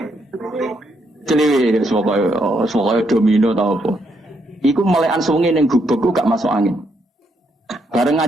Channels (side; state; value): both; normal; correlation 0.76